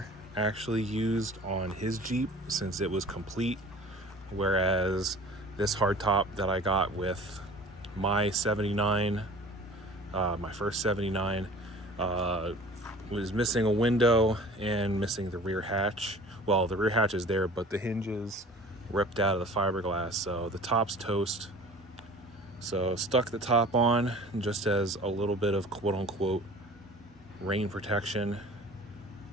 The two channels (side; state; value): both; normal; correlation 0.45